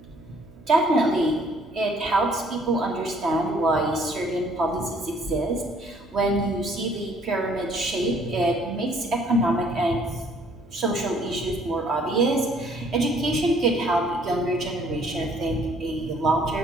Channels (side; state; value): right; noise; hum, 23 dB below the sound